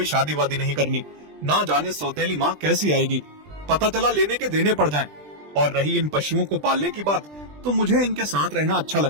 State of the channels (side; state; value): left; late; 20 ms